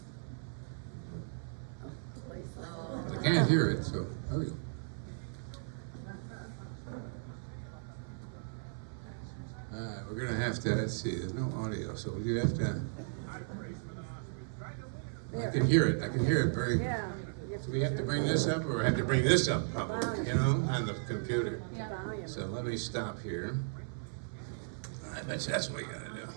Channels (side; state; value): left; silent; 54 dB below the other